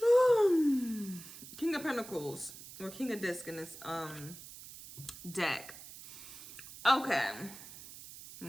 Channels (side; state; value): right; noise; hiss, 15 dB below the sound